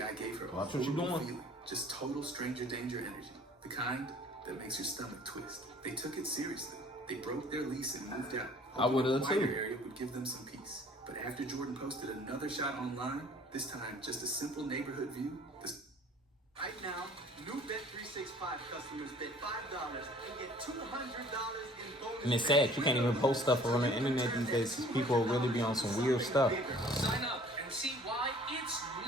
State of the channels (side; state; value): both; normal; correlation 0.52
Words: gave her watch what you're doing. Feeling, just total stranger danger energy. The kind that makes your stomach twist. They took it seriously. They broke their lease and moved out. I would have too. The area would give them some peace. But after Jordan posted another shot online, this time just a simple neighborhood view. Right now, new Bet365 customers bet $5 and get $200 in bonus. And it's sad, you can't even post stuff on the internet these days because people really be on some weird stuff. Sign up and see why it's